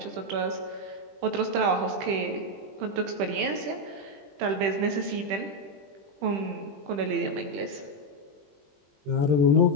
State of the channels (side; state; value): left; late; 20 ms